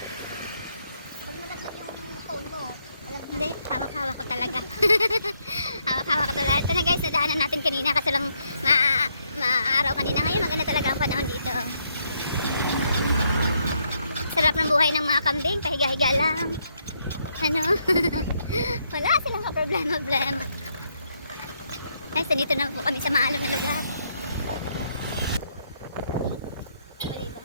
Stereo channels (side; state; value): both; inverted; correlation -0.75